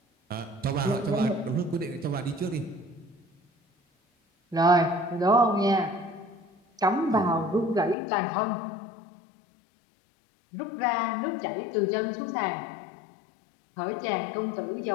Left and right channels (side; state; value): right; drops out; at 8.0 s